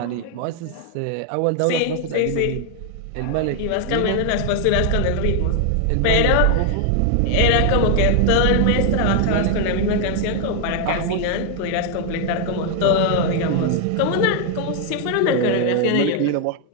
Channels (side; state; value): both; different; correlation 0.00